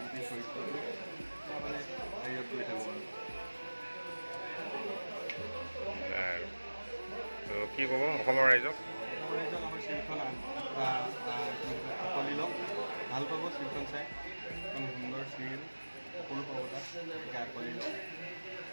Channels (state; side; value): inverted; both; correlation -1.00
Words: গোটেই চৰিত্ৰটো মানে হেৰিয়ত কৰি থাকোঁ আৰু কি ক'ব অসমৰ ৰাইজক? অসমৰ ৰাইজক আমাৰ চিৰিয়েলখন আঁকোৱালি লওক, ভাল পাব চিৰিয়েলখন চাই। এখন সুন্দৰ চিৰিয়েল, সকলো পাব তাত, গতিকে আঁকোৱালি লওক।